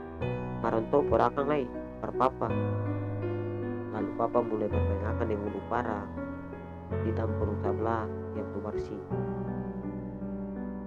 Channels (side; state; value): both; identical; correlation 1.00